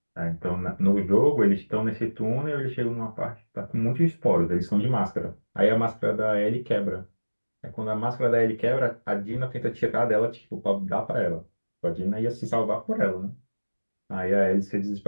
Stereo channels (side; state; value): both; inverted; correlation -1.00